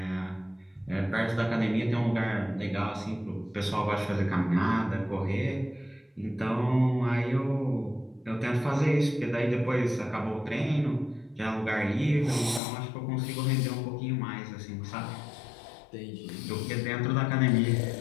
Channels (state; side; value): drops out; right; at 12.6 s